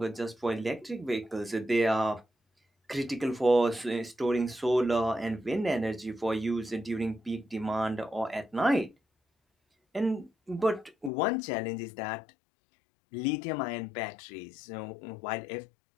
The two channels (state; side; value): drops out; right; at 11.1 s